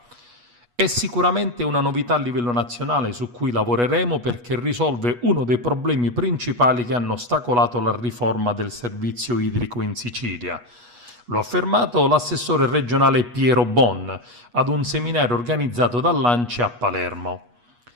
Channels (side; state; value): left; late; 8.3 ms